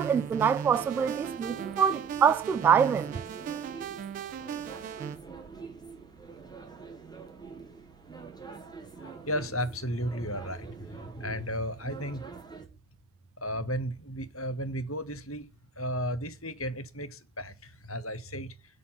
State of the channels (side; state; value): left; quieter; 5.1 dB